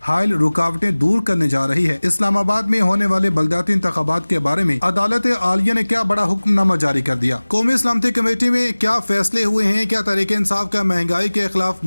हायल रुकावटें दूर करने जा रही है। इस्लामाबाद में होने वाले बल्दियाती इंतखाबात के बारे में अदालत आलिया ने क्या बड़ा हुक्मनामा जारी कर दिया। कौमी सलामती कमेटी में क्या फैसले हुए हैं, क्या तहरीक इंसाफ का महंगाई के खिलाफ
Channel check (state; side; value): inverted; both; correlation -1.00